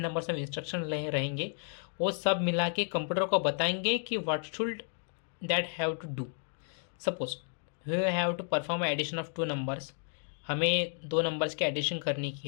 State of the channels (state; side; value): silent; right; 56 dB below the other